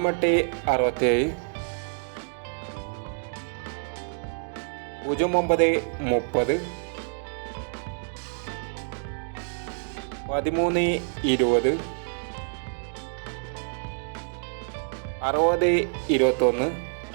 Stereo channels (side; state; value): left; silent; digital silence